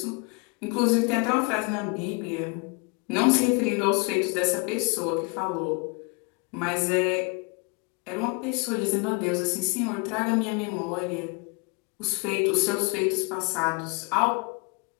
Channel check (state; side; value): quieter; right; 31.8 dB